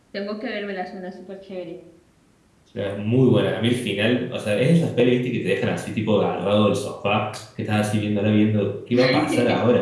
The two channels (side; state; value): both; identical; correlation 1.00